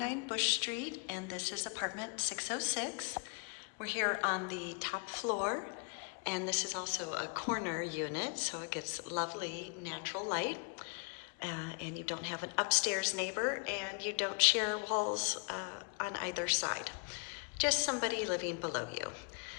Bush Street and this is apartment 606. We're here on the top floor and this is also a corner unit, so it gets lovely natural light. And you don't have an upstairs neighbor and you don't share walls on either side. Just somebody living below you.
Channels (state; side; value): quieter; right; 36.2 dB